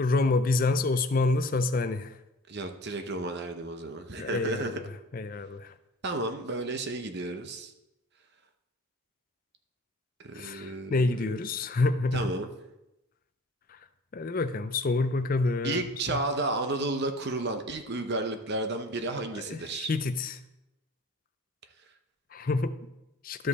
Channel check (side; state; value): both; normal; correlation 0.46